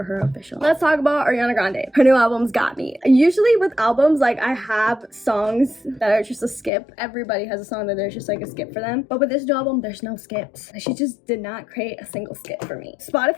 her official. Let's talk about Ariana Grande. Her new album's got me. Usually with albums, like I have songs that are just a skip. Everybody has a song that there's just like a skip for them. But with this new album, there's no skips. She just did not create a single skip for me.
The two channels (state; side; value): drops out; right; at 6.7 s